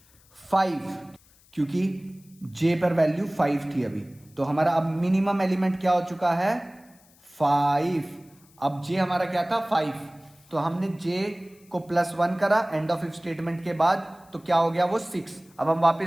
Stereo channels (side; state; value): left; noise; hiss, 29 dB below the sound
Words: 5, क्योंकि j पर वैल्यू 5 थी अभी। तो हमारा अब मिनिमम एलिमेंट क्या हो चुका है 5। अब j हमारा क्या था 5, तो हमने j को प्लस 1 करा एंड ऑफ इफ स्टेटमेंट के बाद, तो क्या हो गया वो 6। अब हम